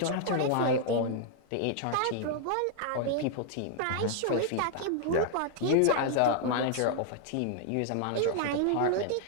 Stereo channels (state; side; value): different; both; correlation 0.00